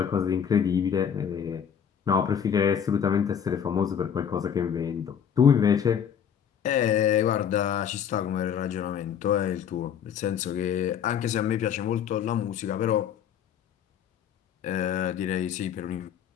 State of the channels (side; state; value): right; quieter; 8.3 dB